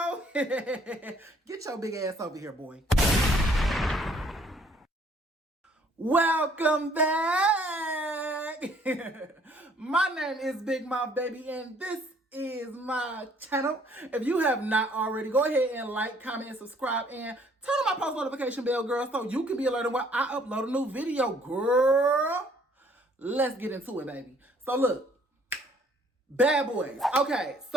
Get your big ass over here, boy. Welcome back. My name is Big Mouth Baby, and this is my channel. If you have not already, go ahead and like, comment, and subscribe, and turn on my post notification bell, girl, so you can be alerted when I upload a new video, girl. Let's get into it, baby. So look, bad boys. Okay,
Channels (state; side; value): normal; both; correlation 0.61